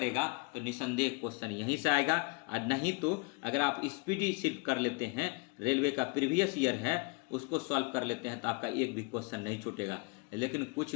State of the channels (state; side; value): quieter; right; 29.5 dB